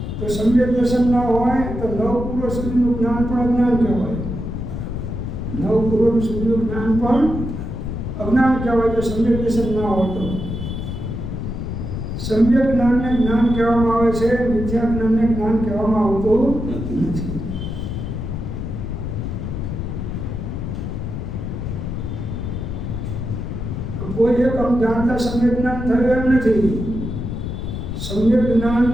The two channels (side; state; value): left; noise; rumble, 5 dB below the sound